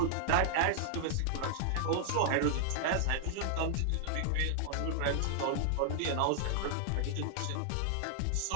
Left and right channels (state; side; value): different; both; correlation -0.01